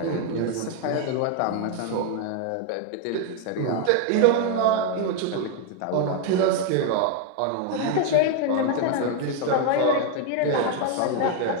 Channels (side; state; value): both; different; correlation 0.01